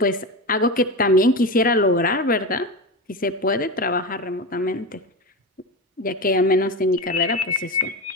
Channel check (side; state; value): both; normal; correlation 0.21